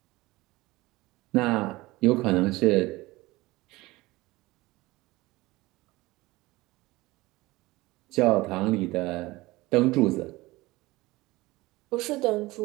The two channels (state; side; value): quieter; left; 20.3 dB